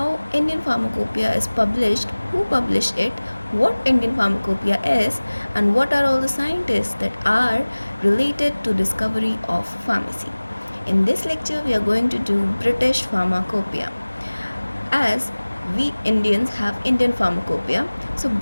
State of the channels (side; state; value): both; inverted; correlation -1.00